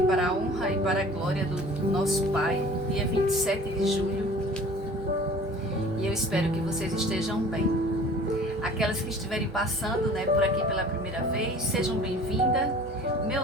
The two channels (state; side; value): normal; both; correlation 0.46